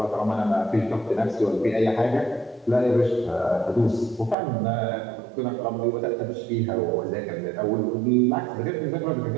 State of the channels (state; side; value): drops out; left; at 4.4 s